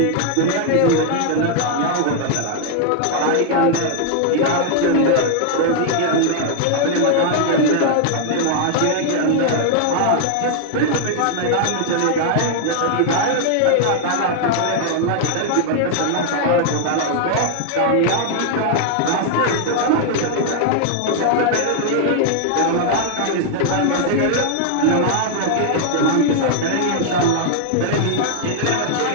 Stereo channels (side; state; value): both; different; correlation 0.00